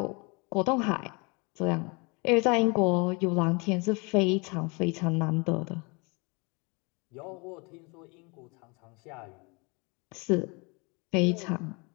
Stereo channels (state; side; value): quieter; right; 29.7 dB